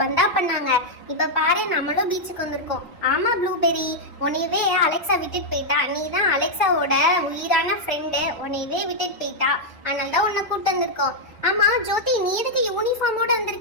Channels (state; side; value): normal; both; correlation -0.04